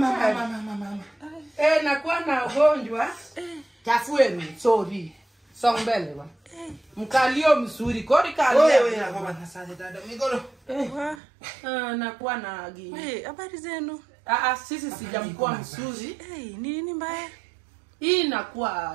Nakuwa na ugonjwa. Tafueni, sorry. Songbele wa. Mkalio mzuri, kodi kalio. Wewe na baba na sasa dada migolo. Nakuwa na gini. Habari zenu? Sisi sijamkuwa mzuri. Nini mbaya? Hii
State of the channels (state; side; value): drops out; left; at 11.2 s